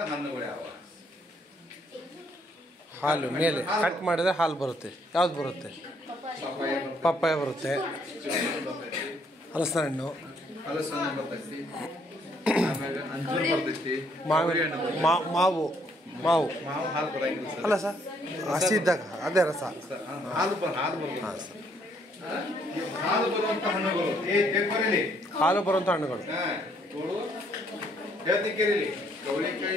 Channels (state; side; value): normal; both; correlation 0.68